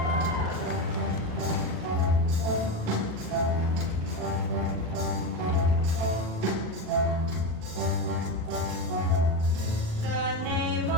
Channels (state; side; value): late; left; 39 ms